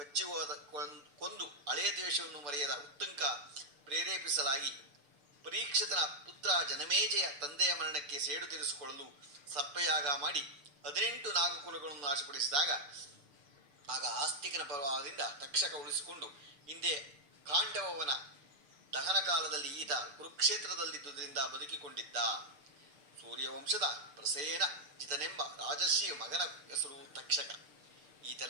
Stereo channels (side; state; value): left; late; 6.9 ms